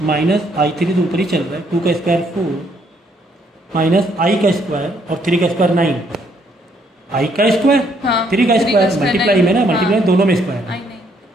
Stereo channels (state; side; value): normal; both; correlation 0.69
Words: माइनस i3 तो ऊपर ही चल रहा है, 2 का स्क्वायर 4 माइनस i का स्क्वायर और 3 का स्क्वायर 9, i का स्क्वायर 3 का स्क्वायर मल्टीप्लाई में ना, मल्टीप्लाई दोनों में स्क्वायर है।